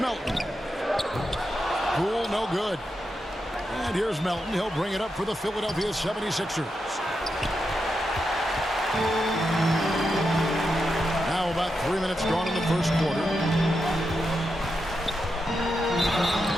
Poole, no good. And here's Melton. He'll bring it up for the Philadelphia 76ers. Now about 3 minutes gone in the first quarter.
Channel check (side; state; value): both; normal; correlation 0.86